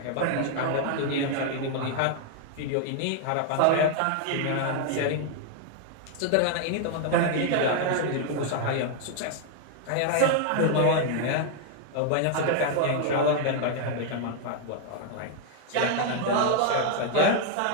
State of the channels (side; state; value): both; different; correlation 0.00